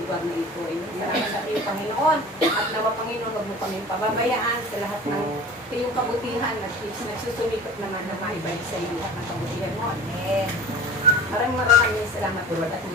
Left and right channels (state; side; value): normal; both; correlation 0.38